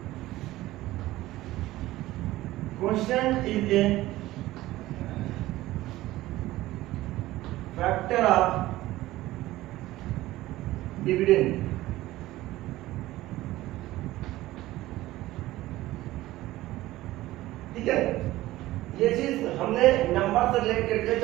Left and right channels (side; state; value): left; quieter; 16.7 dB